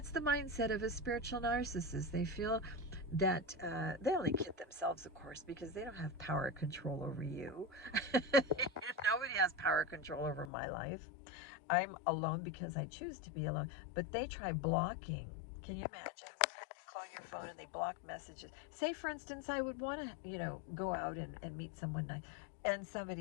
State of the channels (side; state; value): right; drops out; at 10.5 s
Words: the mindset of a spiritual narcissist. They feel that they only kid themselves, of course, because they don't have power control over you. Nobody has power control over my life. I'm alone because I choose to be alone. But they try blocking. Can you imagine? They call your phone and they block messages. Say, for instance, I would want to, go out and meet someone nice, and